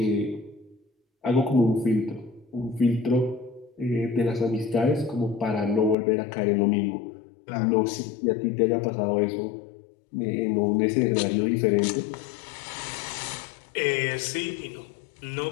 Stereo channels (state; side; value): drops out; right; at 6.0 s